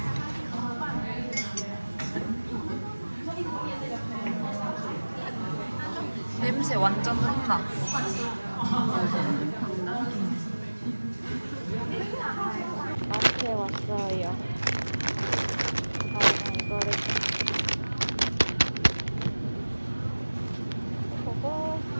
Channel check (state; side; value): inverted; both; correlation -1.00